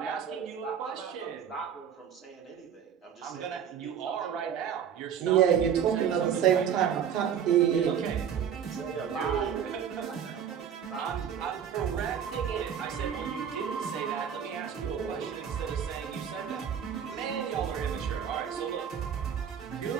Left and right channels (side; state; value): left; quieter; 8.3 dB